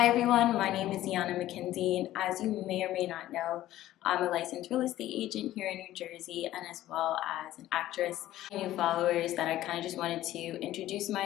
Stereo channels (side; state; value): right; quieter; 14.3 dB